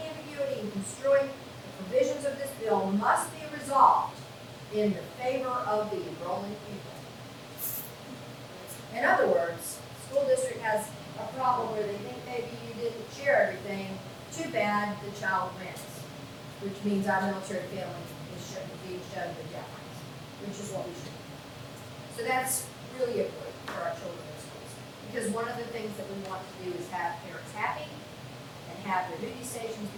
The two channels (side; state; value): both; identical; correlation 1.00